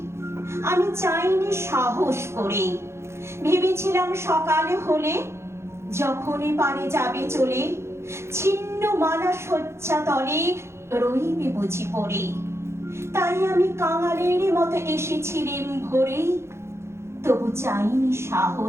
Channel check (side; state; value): left; late; 0.13 ms